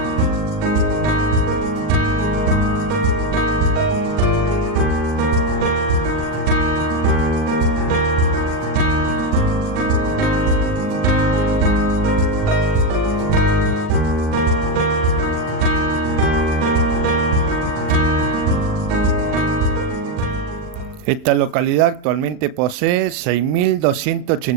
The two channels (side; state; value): left; late; 39 ms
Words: Esta localidad actualmente posee